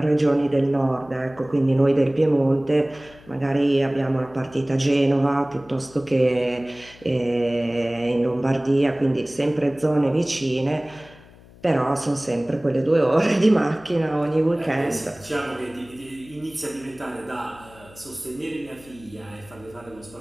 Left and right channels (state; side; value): noise; left; hum, 23 dB below the sound